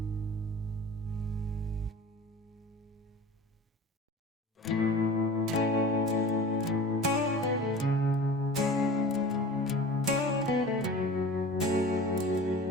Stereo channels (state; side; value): normal; both; correlation 0.39